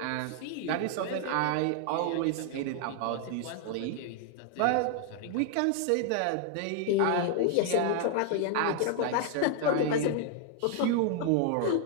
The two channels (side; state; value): both; different; correlation 0.00